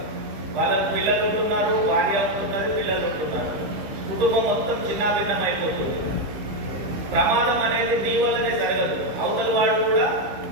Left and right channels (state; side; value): late; left; 15 ms